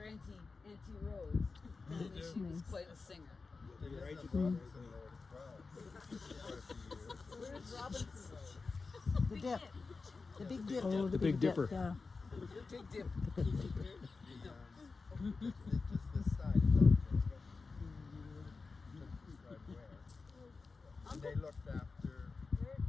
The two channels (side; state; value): right; quieter; 4.2 dB